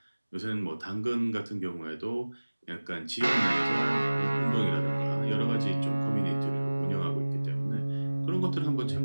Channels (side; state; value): both; inverted; correlation -1.00